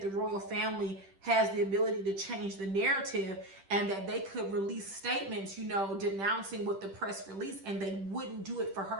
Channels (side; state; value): left; late; 10 ms